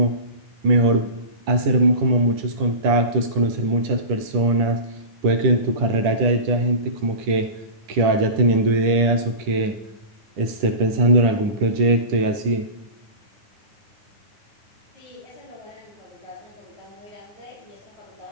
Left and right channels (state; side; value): late; left; 10 ms